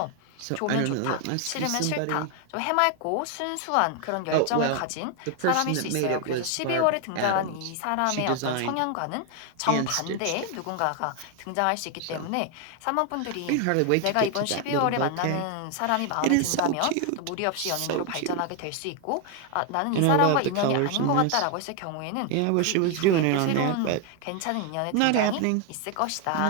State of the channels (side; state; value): both; different; correlation 0.01